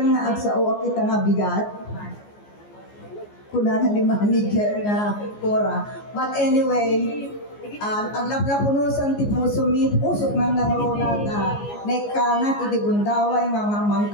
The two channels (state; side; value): late; right; 14 ms